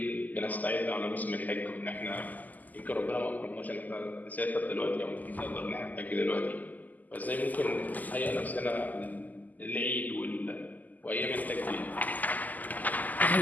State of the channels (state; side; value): late; right; 0.081 ms